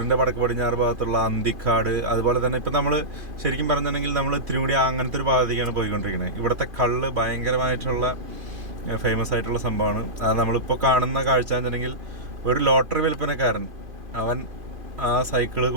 വടക്ക് പടിഞ്ഞാറ് ഭാഗത്തുള്ള അന്തിക്കാട്, അതുപോലെ തന്നെ ഇപ്പം നമ്മൾ ശരിക്കും പറഞ്ഞിട്ടുണ്ടെങ്കിൽ നമ്മൾ തിരുമുടി അങ്ങനത്തെ ഒരു ഭാഗത്തേക്കാണ് പോയിക്കൊണ്ടിരിക്കുന്നത്. ഇവിടുത്തെ കള്ള് ഭയങ്കരമായിട്ടുള്ള ഫേമസ് ആയിട്ടുള്ള സംഭവമാണ്. അത് നമ്മളിപ്പോൾ കാണുന്ന കാഴ്ച എന്നുണ്ടെങ്കിൽ ഒരു ലോട്ടറി വിൽപ്പനക്കാരൻ അവൻ ആ സൈക്കിള്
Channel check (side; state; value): left; late; 2.5 ms